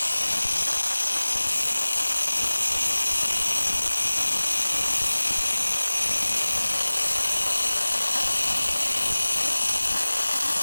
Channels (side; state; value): both; inverted; correlation -1.00